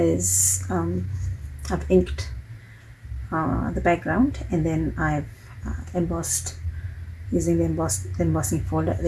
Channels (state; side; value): identical; both; correlation 1.00